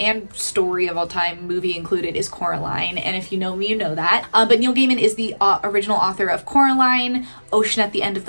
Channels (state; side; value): inverted; both; correlation -1.00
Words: story of all time, movie included, is Coraline. And if you know me, you know that. But Neil Gaiman is the original author of Coraline, Ocean at the End of